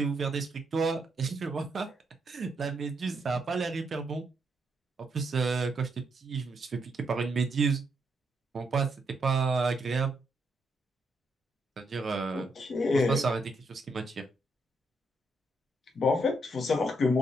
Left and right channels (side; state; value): both; normal; correlation 0.77